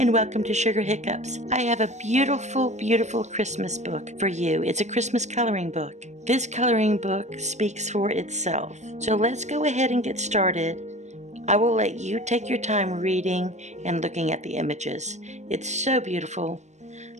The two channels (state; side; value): late; left; 0.34 ms